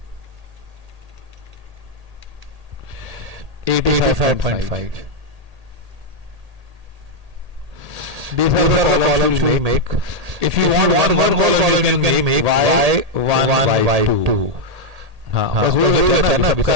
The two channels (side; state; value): left; late; 1.8 ms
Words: 85.5. These are the columns we make. If you want one more column, you can make y1, y2. हाँ, बस वो है ना, सबका